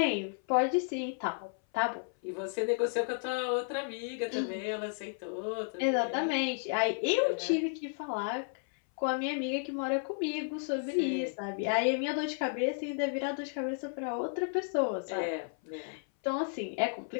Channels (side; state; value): right; silent; 56 dB below the other